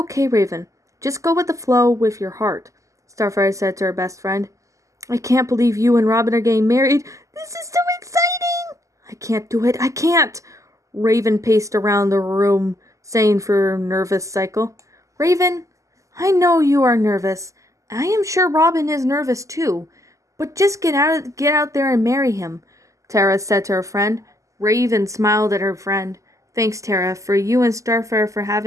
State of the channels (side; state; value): left; late; 0.16 ms